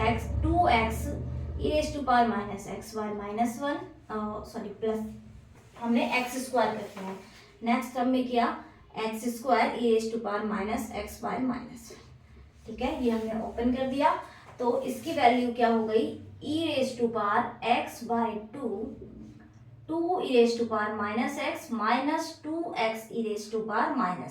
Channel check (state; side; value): identical; both; correlation 1.00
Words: x 2x e raise to power minus x by minus 1 sorry plus हमने x square कर दिया। Next term में किया x square e raise to power minus x by minus, ठीक है, ये हमने ओपन कर दिया। तो इसकी वैल्यू क्या हो गई, e raise to power x by 2 e raise to power minus x minus 2x e raise to power